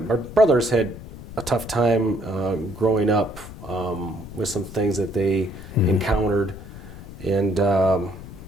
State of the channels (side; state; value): left; noise; rumble, 14 dB below the sound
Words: had a tough time growing up with some things that they encountered, and